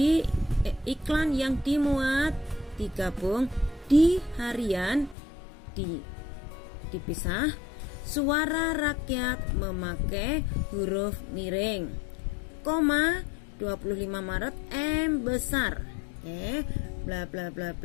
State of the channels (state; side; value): drops out; right; at 5.2 s